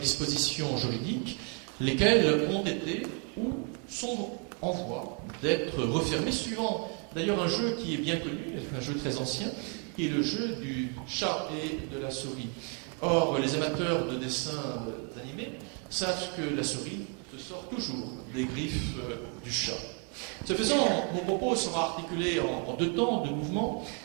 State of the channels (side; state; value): left; quieter; 38.4 dB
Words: juridiques, lesquelles ont été ou sont en voie d'être refermées, suivant d'ailleurs un jeu qui est bien connu, un jeu très ancien, qui est le jeu du chat et de la souris. Or, les amateurs de dessins animés savent que la souris se sort toujours des griffes du chat. Ce faisant, mon propos sera articulé en deux temps de mouvements.